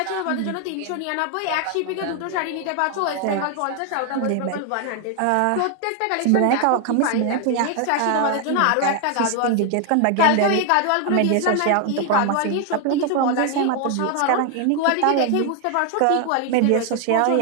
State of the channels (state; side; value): different; both; correlation 0.00